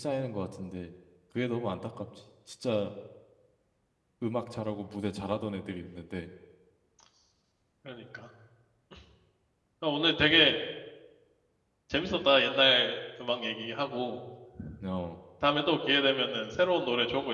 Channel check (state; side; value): identical; both; correlation 1.00